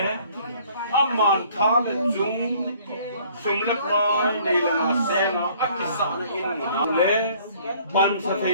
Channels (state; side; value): inverted; both; correlation -0.57